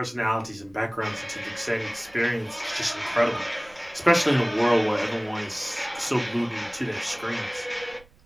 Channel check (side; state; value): right; noise; rumble, 27 dB below the sound